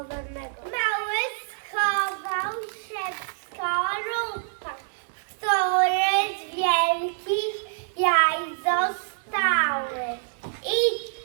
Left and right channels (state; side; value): silent; left; 61 dB below the other